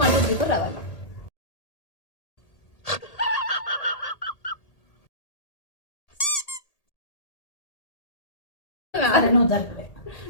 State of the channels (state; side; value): late; right; 1.8 ms